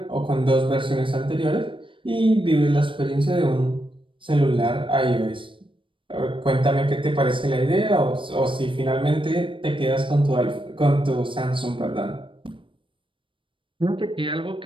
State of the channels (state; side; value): late; left; 0.25 ms